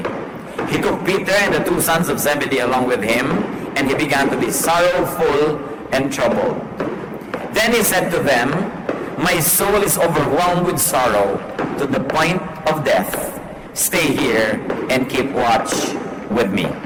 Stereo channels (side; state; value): both; identical; correlation 1.00